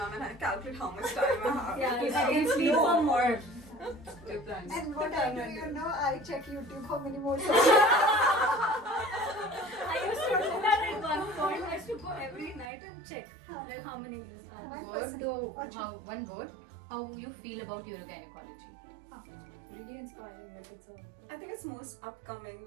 and I calculate how much time I have. Yeah, if I can sleep for more. Sleep time. And what I do, you know, I check YouTube how many more I used to do that at one point. I used to go every night and check like how many years are. My Word person- though, Acha. one word. How you feel about urogynecology? Really inspiring. Like it's a I think it's most upcoming.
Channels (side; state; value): left; drops out; at 12.7 s